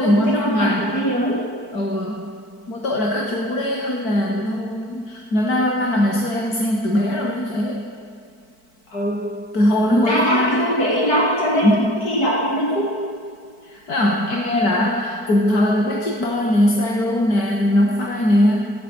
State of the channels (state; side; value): late; right; 4.5 ms